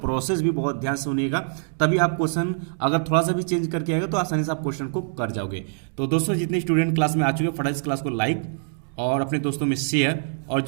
भी बहुत ध्यान से सुनिएगा, तभी आप क्वेश्चन अगर थोड़ा सा भी चेंज करके आएगा तो आसानी से आप क्वेश्चन को कर जाओगे। तो दोस्तों जितने स्टूडेंट क्लास में आ चुके हैं फटाफट इस क्लास को लाइक और अपने दोस्तों में शेयर, और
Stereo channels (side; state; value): left; silent; digital silence